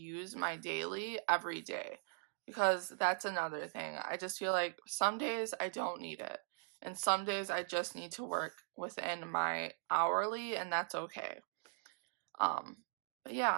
my daily every day, because that's another thing. I just feel like some days I don't need it, and some days I just need to work within my hourly, and that's okay. But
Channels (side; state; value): left; silent; digital silence